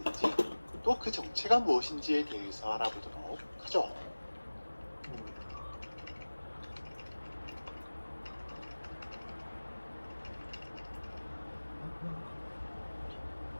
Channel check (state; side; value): inverted; both; correlation -1.00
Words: 또 그 정체가 무엇인지에 대해서 알아보도록 하죠.